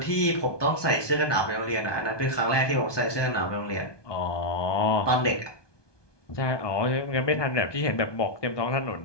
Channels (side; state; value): right; late; 1.2 ms